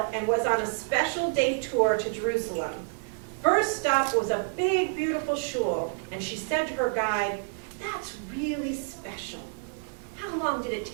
and was on a special day tour to Jerusalem. First stop was a big, beautiful shul, and she said to her guide, "That's really special. How long did it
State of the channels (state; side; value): silent; left; 59 dB below the other